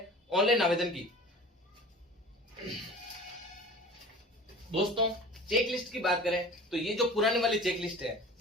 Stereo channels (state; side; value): normal; both; correlation 0.40